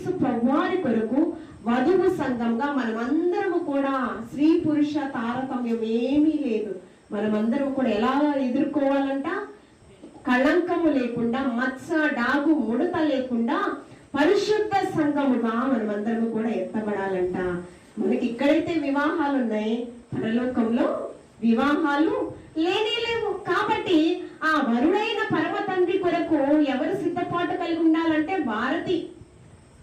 ప్రభువారి కొరకు వధువు సంఘంగా మనమందరము కూడా, స్త్రీ పురుష తారతమ్యం ఏమీ లేదు, మనమందరం కూడా ఎలా ఎదుర్కోవాలంట? కళంకము లేకుండా, మత్స డాగు ముడత లేకుండా పరిశుద్ధ సంఘముగా మనమందరము కూడా ఎత్తబడాలంట. మనకి ఇక్కడైతే వివాహాలు ఉన్నాయి, పరలోకంలో వివాహాలు లేవు. కాబట్టి ఆ వరుడైన పరమ తండ్రి కొరకు ఎవరు సిద్ధపాటు కలిగి ఉండాలంటే, భారతి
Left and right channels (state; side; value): identical; both; correlation 1.00